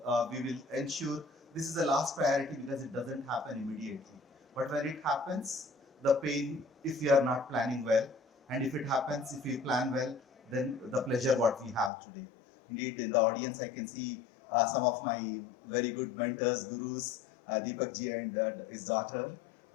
will ensure this is the last priority because it doesn't happen immediately. But when it happens, the pain, if we are not planning well, and if it happens, if we plan well, then the pleasure what we have today. Indeed, in the audience, I can see some of my very good mentors, gurus, Deepak ji and his daughter,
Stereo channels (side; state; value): right; drops out; at 11.9 s